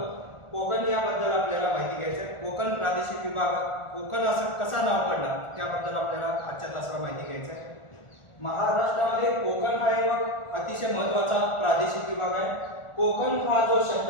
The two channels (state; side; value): late; right; 1.4 ms